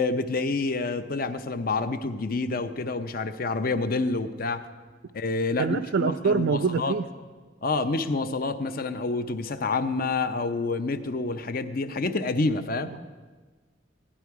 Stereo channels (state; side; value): normal; both; correlation 0.20